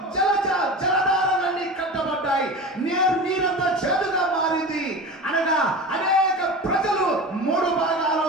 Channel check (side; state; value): both; normal; correlation 0.31